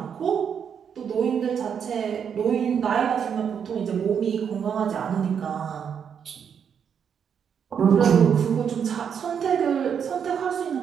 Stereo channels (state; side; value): quieter; left; 7.5 dB